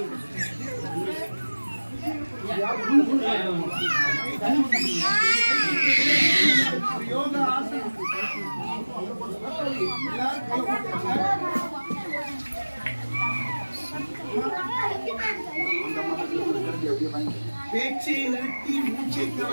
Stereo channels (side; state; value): both; inverted; correlation -1.00